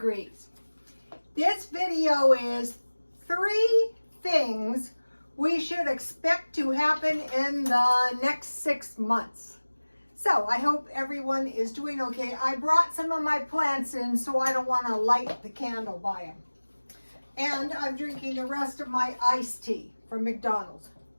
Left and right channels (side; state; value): both; inverted; correlation -1.00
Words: This video is 3 things we should expect to happen in the next 6 months. So I hope everyone is doing okay. I brought some of my plants in, so I don't want to light the candle by them. And I'm drinking the rest of my iced tea from McDonald's.